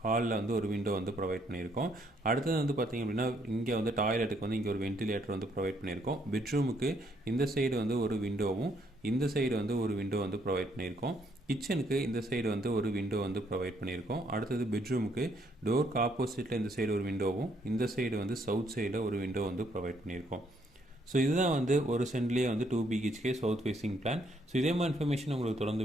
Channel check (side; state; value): both; normal; correlation 0.70